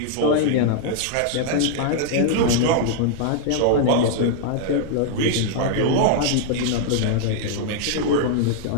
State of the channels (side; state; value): both; different; correlation -0.01